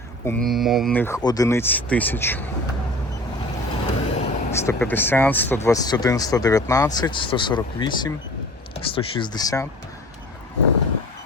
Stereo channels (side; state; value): both; normal; correlation 0.41